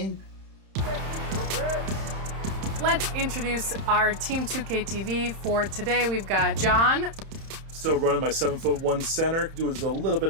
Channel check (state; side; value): late; left; 31 ms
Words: Let's introduce our Team 2K TV for today. We've got John. Still running my 7'1" center. Doing a little bit